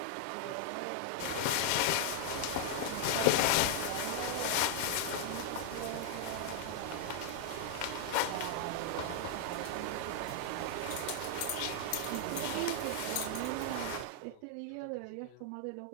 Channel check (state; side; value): different; both; correlation 0.00